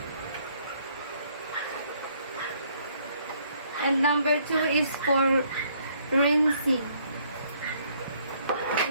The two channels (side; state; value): both; inverted; correlation -0.66